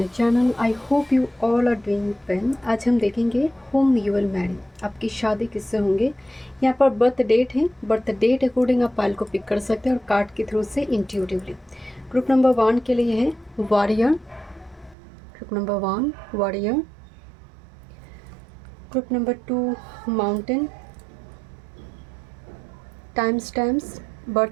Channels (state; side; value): drops out; left; at 15.0 s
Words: channel. I hope you all are doing well. आज हम देखेंगे होम यू विल मैरी, आपकी शादी किससे होंगे। यहाँ पर बर्थ डेट है, बर्थ डेट अकॉर्डिंग आप फाइल को पिक कर सकते हैं और कार्ड के थ्रू से इंट्यूटिवली। ग्रुप नंबर 1 के लिए है warrior, group number 1 warrior, group number 2 mountain. Time stamps